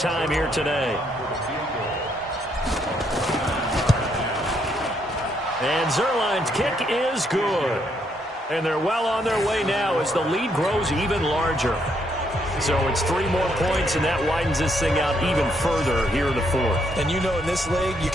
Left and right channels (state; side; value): normal; both; correlation 0.73